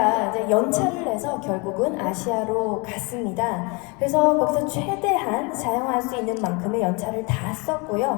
이제 연차를 내서 결국은 아시아로 갔습니다. 그래서 거기서 최대한 사용할 수 있는 만큼의 연차를 다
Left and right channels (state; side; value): quieter; right; 29.6 dB